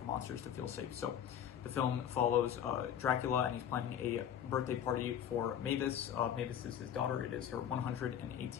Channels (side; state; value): right; quieter; 9.5 dB